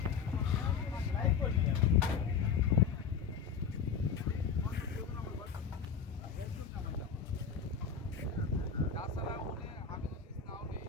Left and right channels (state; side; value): quieter; right; 6.6 dB